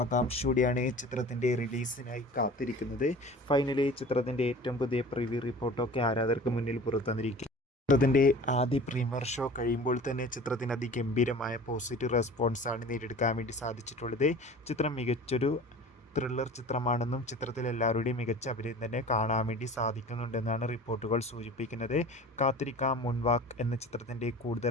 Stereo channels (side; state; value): both; normal; correlation 0.41